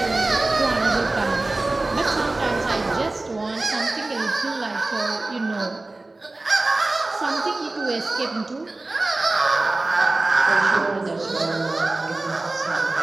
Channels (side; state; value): left; quieter; 3.0 dB